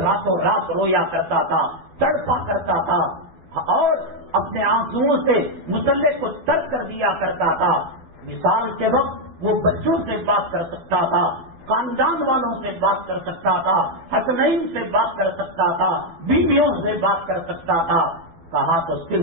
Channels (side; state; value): left; late; 12 ms